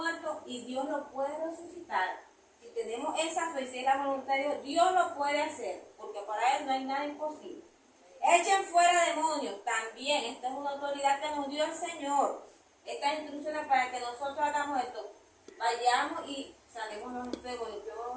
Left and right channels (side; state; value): both; identical; correlation 1.00